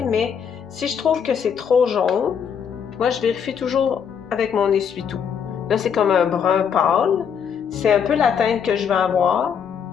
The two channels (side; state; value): right; quieter; 7.4 dB